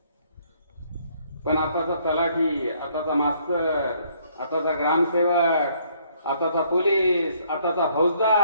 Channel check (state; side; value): inverted; both; correlation -0.65